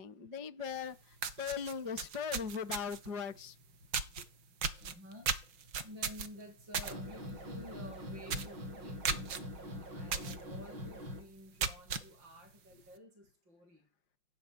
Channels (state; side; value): late; left; 5.6 ms